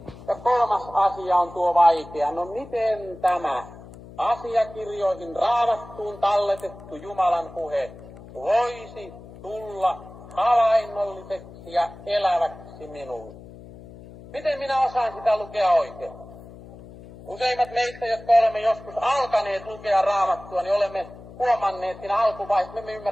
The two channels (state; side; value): noise; left; hum, 17 dB below the sound